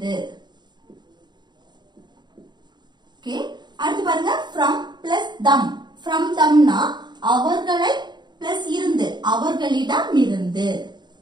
ஓகே, அடுத்து பாருங்க from plus them. from themனா அவர்களை plus இருந்து, அவர்களிடமிருந்து.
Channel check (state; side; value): late; left; 0.21 ms